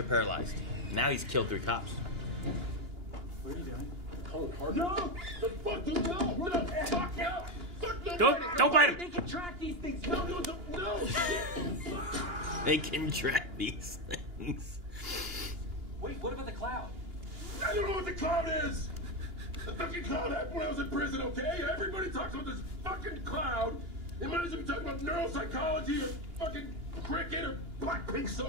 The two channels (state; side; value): late; left; 2.8 ms